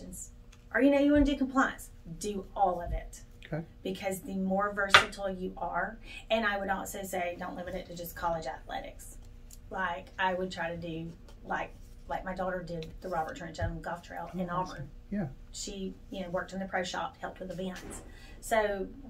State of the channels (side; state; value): both; identical; correlation 1.00